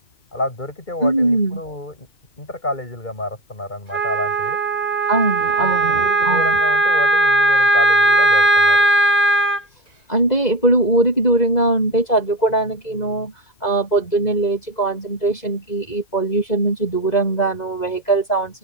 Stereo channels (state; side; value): late; right; 2.0 ms